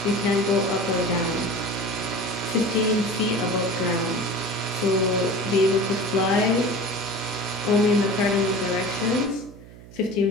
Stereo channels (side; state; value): right; noise; hum, 19 dB below the sound